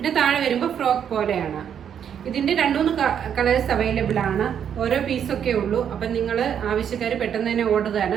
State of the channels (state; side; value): quieter; left; 8.5 dB